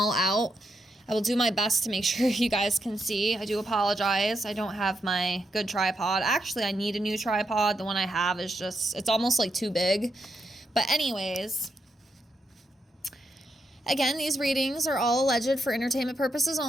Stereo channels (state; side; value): normal; both; correlation 0.82